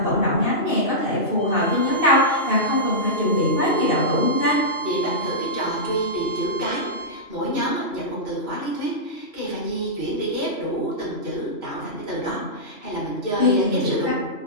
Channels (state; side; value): late; right; 2.9 ms